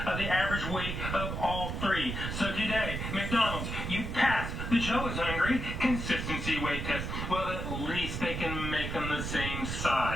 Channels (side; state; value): right; noise; rumble, 4 dB below the sound